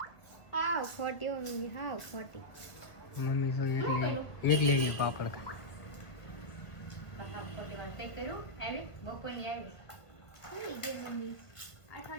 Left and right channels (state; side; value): late; right; 1.6 ms